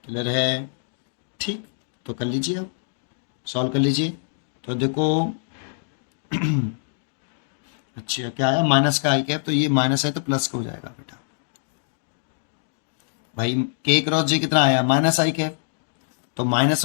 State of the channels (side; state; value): right; silent; digital silence